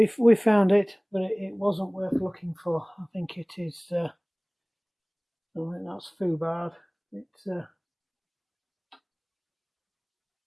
found it, but it wasn't worth looking for. I think it is. I think that's foobarred. It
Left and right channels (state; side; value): identical; both; correlation 1.00